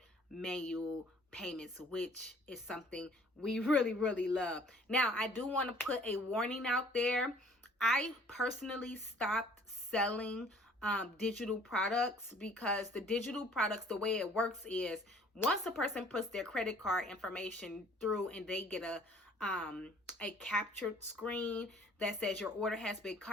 manual payments, which is something we really, really love. Now, I do want to put a warning out there. I personally stopped selling digital products, because the digital products, the way it works is once a person puts their credit card information through and they get a captured screen that says your order has been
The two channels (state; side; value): normal; both; correlation 0.55